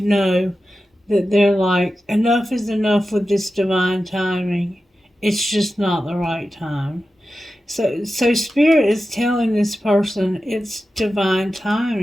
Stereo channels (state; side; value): normal; both; correlation 0.93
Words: know that they're like, enough is enough with this divine timing. It's just not the right time. So Spirit is telling this person it's divine